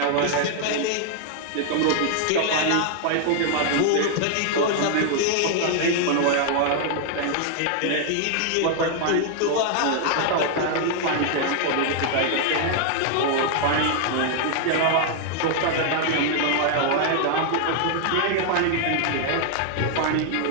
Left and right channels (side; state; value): both; different; correlation 0.00